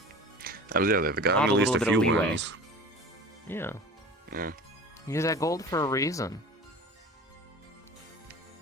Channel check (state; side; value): normal; both; correlation 0.38